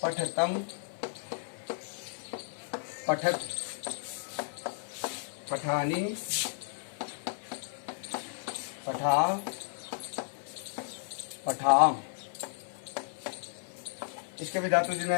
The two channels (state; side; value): silent; right; 55 dB below the other